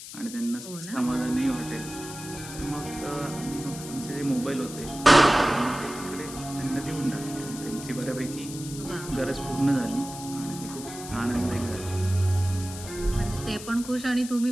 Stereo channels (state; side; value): noise; left; hiss, 12 dB below the sound